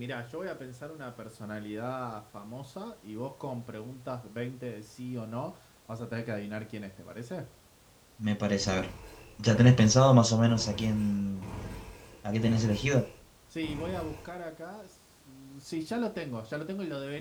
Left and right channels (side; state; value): both; identical; correlation 1.00